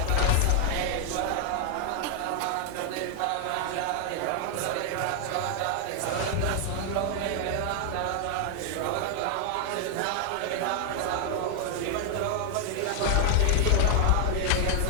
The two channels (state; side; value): different; both; correlation 0.00